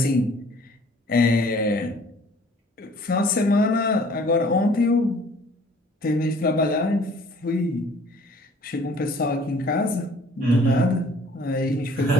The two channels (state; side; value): normal; both; correlation 0.54